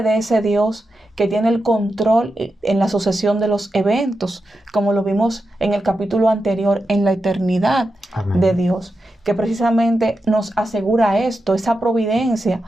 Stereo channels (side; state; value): both; normal; correlation 0.89